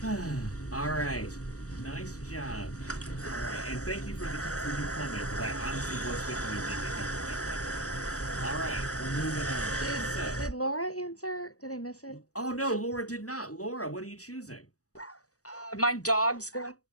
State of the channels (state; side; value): late; right; 0.66 ms